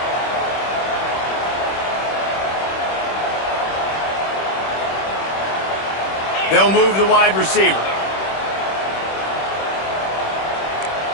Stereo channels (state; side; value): late; right; 26 ms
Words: They'll move the wide receiver.